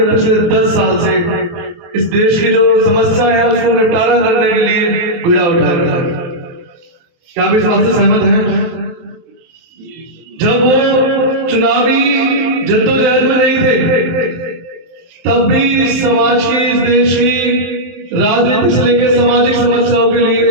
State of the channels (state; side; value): late; left; 23 ms